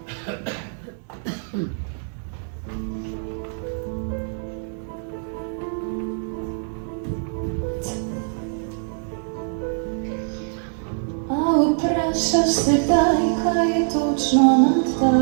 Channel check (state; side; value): silent; left; 58 dB below the other